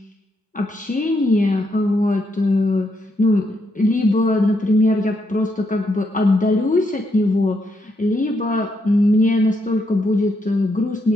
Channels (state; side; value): normal; both; correlation 0.78